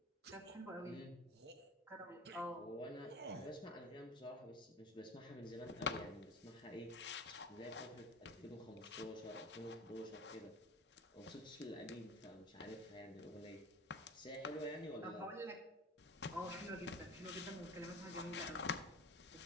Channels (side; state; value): both; normal; correlation 0.36